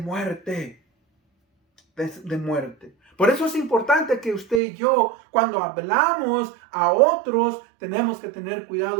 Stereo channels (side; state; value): left; drops out; at 4.6 s